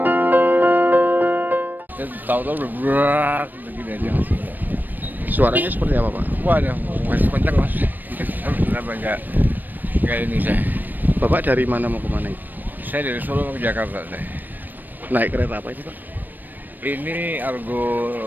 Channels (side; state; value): left; late; 0.089 ms